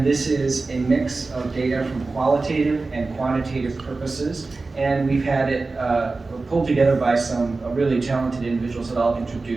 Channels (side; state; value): left; quieter; 3.7 dB